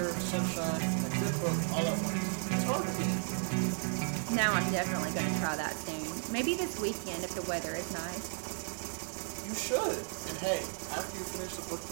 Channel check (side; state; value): left; silent; 55 dB below the other